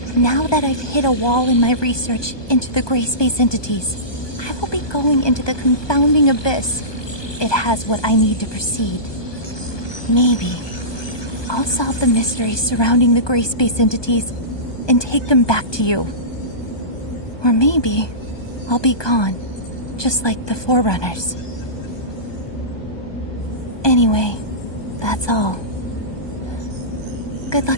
Now that I've hit a wall in my research into the gray space entities, I will be going into the confounding abyss. It has what I need to proceed. Maybe I'll solve the mysteries surrounding the gray space entities and take them back to you. Or maybe I'll be gone, just like the Forerunners. Anyway, that's all. Good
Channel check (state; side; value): late; right; 1.2 ms